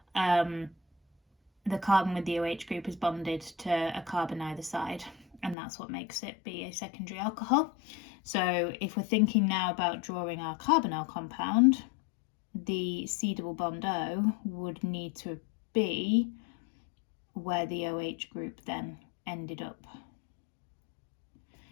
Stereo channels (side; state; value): right; drops out; at 5.6 s